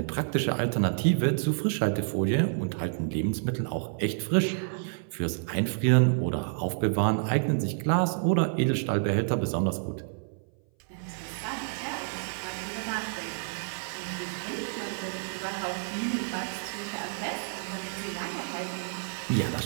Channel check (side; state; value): left; silent; 57 dB below the other